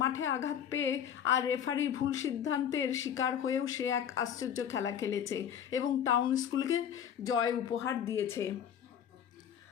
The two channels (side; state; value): right; quieter; 8.9 dB